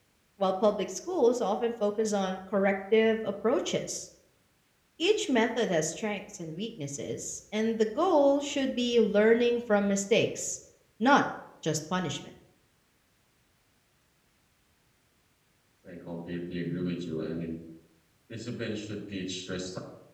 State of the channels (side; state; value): both; identical; correlation 1.00